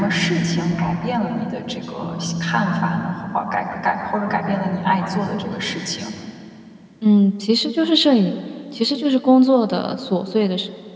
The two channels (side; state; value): both; identical; correlation 1.00